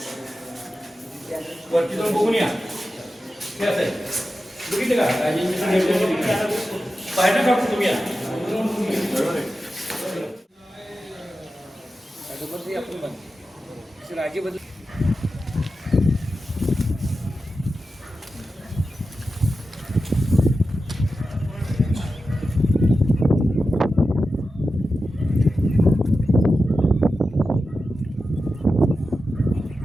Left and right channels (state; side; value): normal; both; correlation 0.92